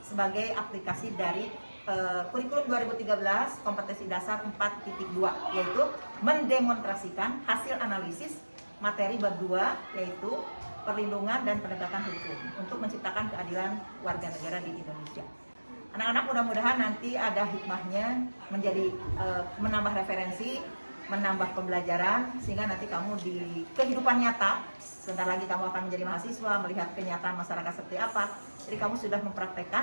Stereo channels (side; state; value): both; inverted; correlation -1.00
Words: sebagai aplikasi dari kurikulum 2013 kompetensi dasar 4.2, yaitu mendemonstrasikan hasil analisis materi bab 2, yaitu perlindungan dan penegakan hukum untuk menciptakan keadilan warga negara di Indonesia. Anak-anak mudah-mudahan nanti ada hikmahnya menjadi menambah referensi, menambah pembelajaran, sehingga nanti kamu di kehidupan nyata, sebentar lagi kamu akan menjadi mahasiswa, melihat kenyataan masyarakat seperti apa. Jadi kamu sudah